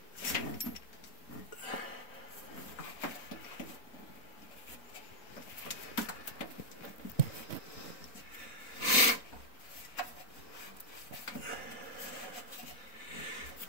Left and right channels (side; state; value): right; late; 4.0 ms